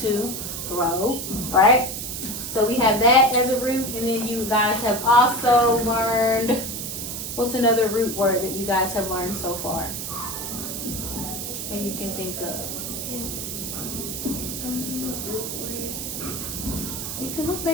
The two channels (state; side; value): noise; right; hiss, 5 dB below the sound